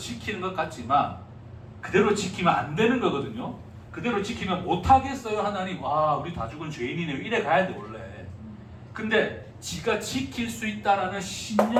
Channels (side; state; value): both; identical; correlation 1.00